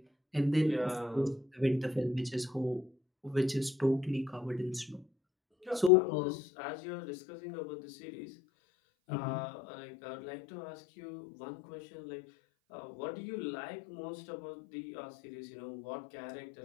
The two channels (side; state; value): right; drops out; at 5.9 s